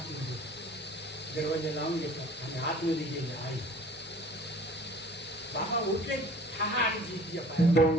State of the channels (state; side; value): normal; both; correlation 0.48